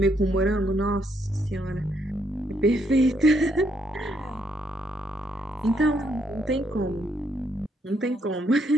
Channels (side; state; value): both; normal; correlation 0.74